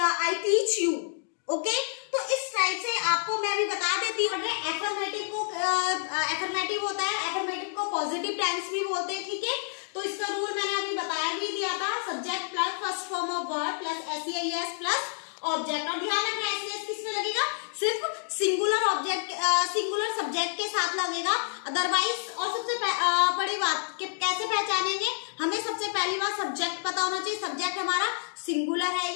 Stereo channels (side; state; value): right; silent; digital silence